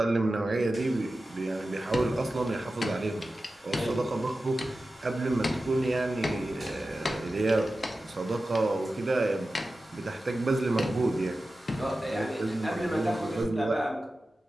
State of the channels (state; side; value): normal; both; correlation 0.94